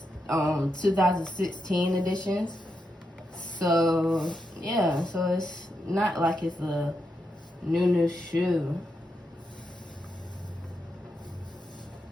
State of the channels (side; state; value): both; normal; correlation 0.84